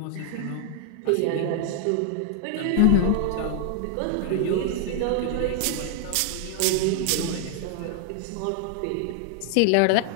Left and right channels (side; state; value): both; different; correlation 0.00